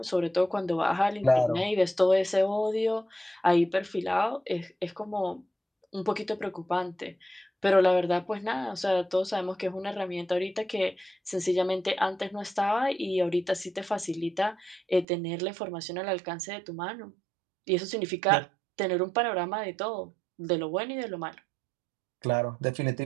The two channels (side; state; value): left; drops out; at 15.1 s